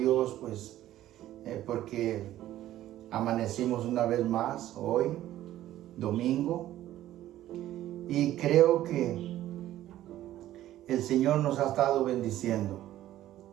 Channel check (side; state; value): left; quieter; 13.6 dB